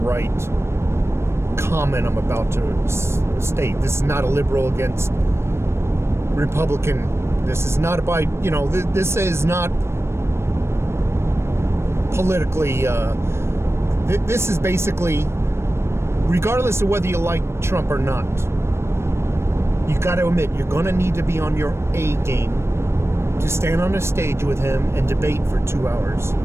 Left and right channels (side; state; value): left; late; 0.13 ms